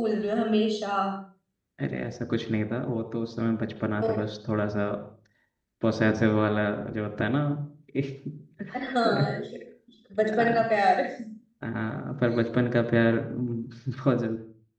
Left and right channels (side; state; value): both; identical; correlation 1.00